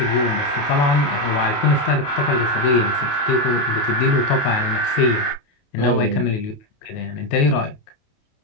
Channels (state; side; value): late; right; 28 ms